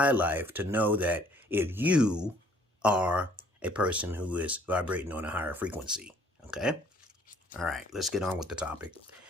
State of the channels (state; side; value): normal; both; correlation 0.59